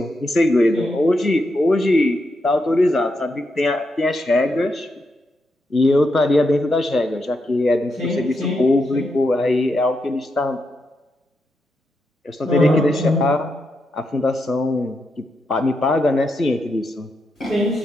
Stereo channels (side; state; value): both; normal; correlation 0.83